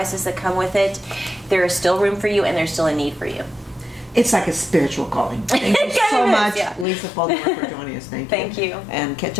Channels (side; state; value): right; drops out; at 6.9 s